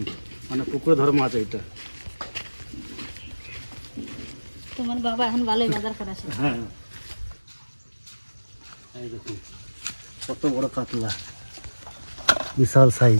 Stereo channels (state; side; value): inverted; both; correlation -1.00